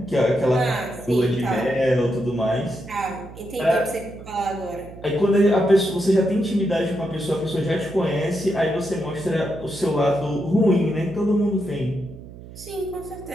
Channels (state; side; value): noise; right; hum, 16 dB below the sound